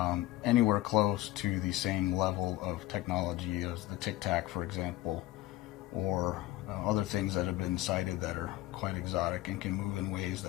anywhere close to the same level of technology as the Tic Tac, for example, or other things that have been cited that are quite exotic and can move in ways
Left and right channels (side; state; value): right; quieter; 16.5 dB